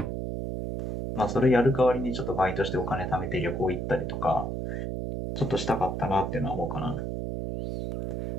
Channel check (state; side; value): noise; right; hum, 2 dB below the sound